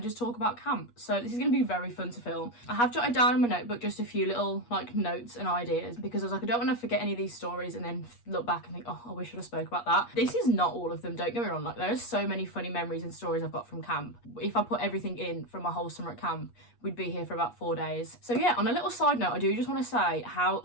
just talk about camp. So this is going to be very fun to film. I have jotted down in my notebook just a few little like notes and ideas because I was like, I don't want to forget any of these stories and then look back and think, oh, I wish I'd have spoke about that. This is not all of them, don't get me wrong, like there are so many funny memories and stories I've got from camp. If I put everything in from my whole summer at camp, we'd be here for about 4 days. So yeah, on a little side note, I do just want to say how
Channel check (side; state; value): right; late; 8.4 ms